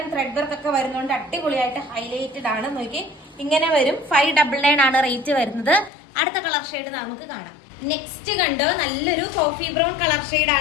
ത്രെഡ് വർക്ക് ഒക്കെ വരുന്നതുകൊണ്ട് അടിപൊളിയായിട്ട് ഹൈലൈറ്റഡ് ആണ്. നോക്കി ഇങ്ങനെ വരും. 599 ആണ് റേറ്റ് വരുന്നത്. അടുത്ത കളർ ഷെയ്ഡ് നമുക്ക് കാണാം. നെക്സ്റ്റ് കണ്ടോ, നല്ലൊരു കോഫി ബ്രൗൺ കളർ ഷെയ്ഡ്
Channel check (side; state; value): right; drops out; at 5.9 s